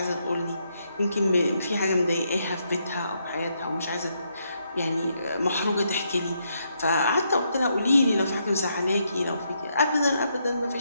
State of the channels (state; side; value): inverted; both; correlation -0.77